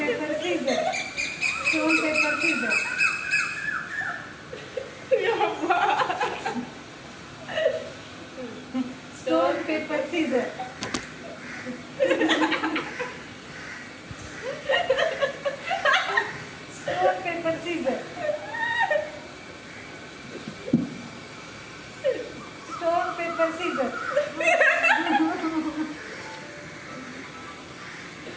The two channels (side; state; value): both; identical; correlation 1.00